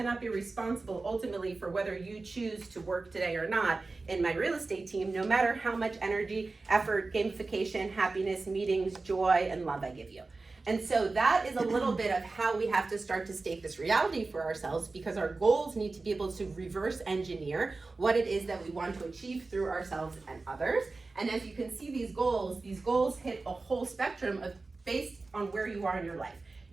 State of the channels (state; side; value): quieter; left; 3.6 dB